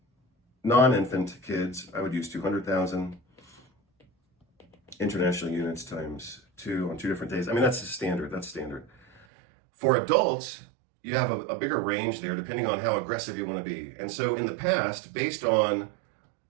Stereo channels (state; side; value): drops out; left; at 9.2 s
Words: non-infant kids, I would use 200,000 international units times 2 on 2 different days. I mean, that's standard. For adults, you have a bigger range there depending on how aggressive you want to be. And so in the past, based on